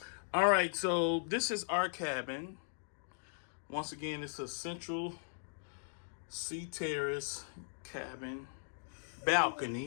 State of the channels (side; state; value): right; silent; digital silence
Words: All right. So this is our cabin. Once again, it's a central Sea Terrace cabin